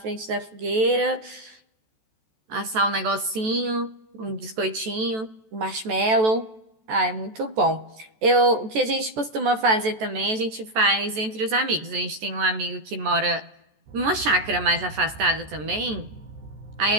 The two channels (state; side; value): late; left; 14 ms